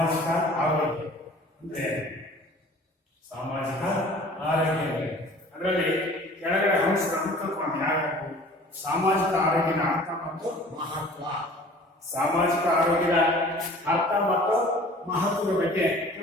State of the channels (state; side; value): normal; both; correlation 0.47